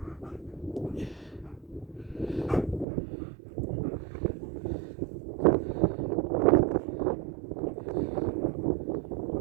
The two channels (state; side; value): drops out; left; at 2.9 s